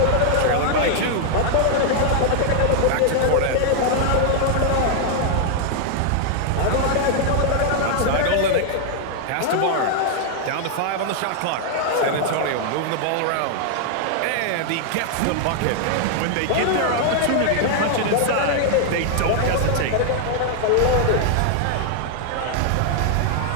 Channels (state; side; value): different; both; correlation 0.00